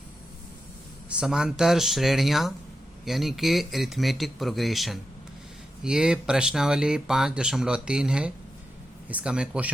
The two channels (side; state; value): both; normal; correlation 0.88